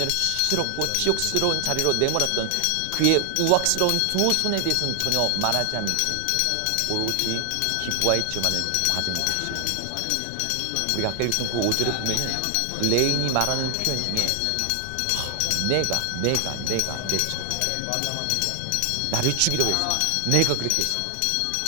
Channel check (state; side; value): different; both; correlation 0.00